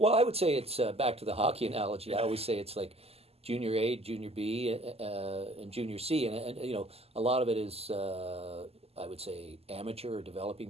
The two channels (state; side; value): late; left; 0.29 ms